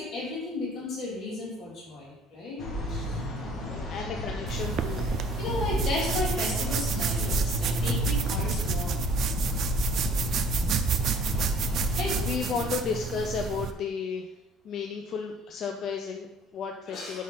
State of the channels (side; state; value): both; normal; correlation 0.53